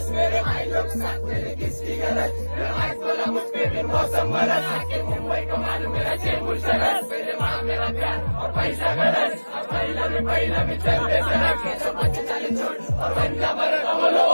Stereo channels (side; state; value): both; inverted; correlation -1.00